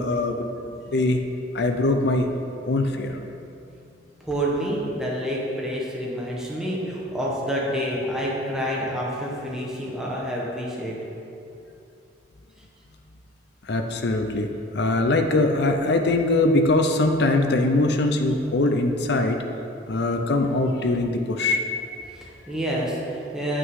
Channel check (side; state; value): both; normal; correlation 0.42